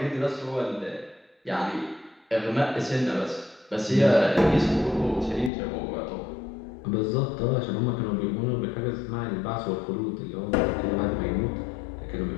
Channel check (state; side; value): drops out; right; at 5.5 s